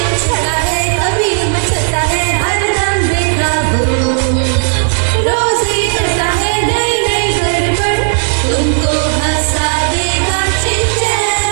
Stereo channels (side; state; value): left; silent; digital silence